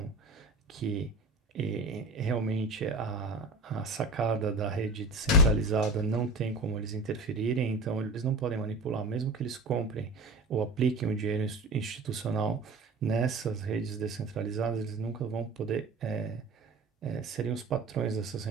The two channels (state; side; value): quieter; left; 3.0 dB